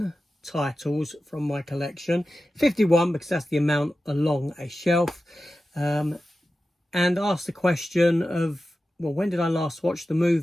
titles from my collection, 51 because that's the amount along a shelf, and ask the question of, well, when did I last watch the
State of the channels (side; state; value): both; normal; correlation 0.93